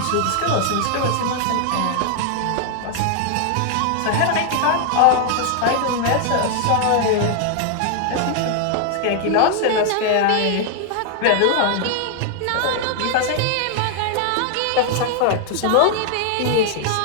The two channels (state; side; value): different; both; correlation 0.00